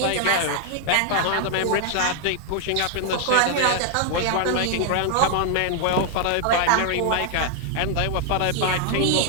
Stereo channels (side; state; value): both; different; correlation 0.00